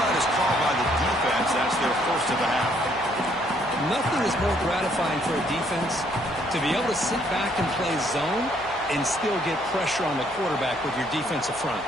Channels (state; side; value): noise; left; hum, 22 dB below the sound